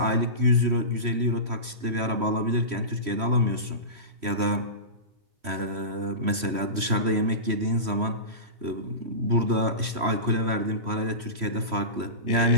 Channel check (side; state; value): left; late; 3.1 ms